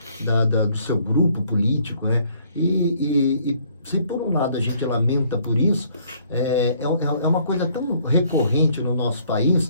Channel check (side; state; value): both; inverted; correlation -0.63